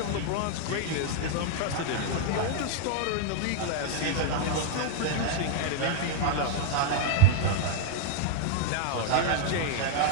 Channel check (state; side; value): different; both; correlation 0.00